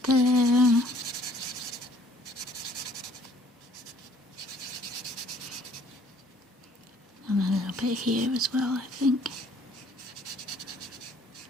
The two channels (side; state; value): both; normal; correlation 0.59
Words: there. And a little bit here as well, I think.